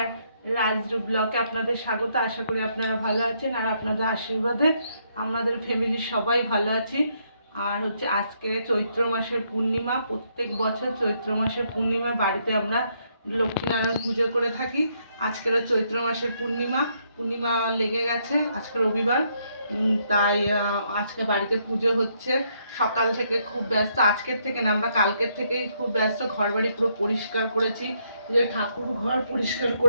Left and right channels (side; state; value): both; inverted; correlation -0.74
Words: রাজরূপ ব্লকে আপনাদের স্বাগত। আশা করি আপনারা ভালো আছেন আর আপনাদের আশীর্বাদে আমাদের ফ্যামিলির সবাই ভালো আছি। আর আজকে চৈত্র মাসের পূর্ণিমা। প্রত্যেক বছর চৈত্র মাসের পূর্ণিমা বাড়িতে আমরা লক্ষ্মীনারায়ণ পুজো করে থাকি। আজকেরও চৈত্র মাসের পূর্ণিমা লেগে গেছে। আজকে রবিবার, তাই আজকে বাড়িতে পুজো হচ্ছে। সকাল থেকে খুব ব্যস্ত, আজকের থেকে না, আমরা কালকের থেকেই খুব ব্যস্ত। ঘর বাড়ি পুরো পরিষ্কার করেছি, যে ঠাকুর ঘর পরিষ্কার